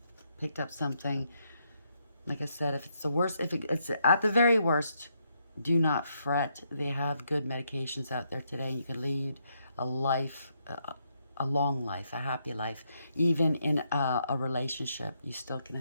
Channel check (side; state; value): both; inverted; correlation -0.77